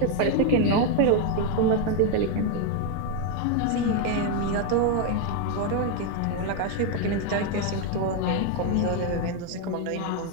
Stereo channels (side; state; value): both; different; correlation 0.01